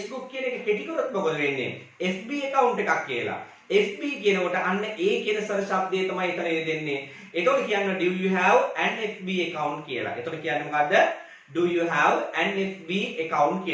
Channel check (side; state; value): both; identical; correlation 1.00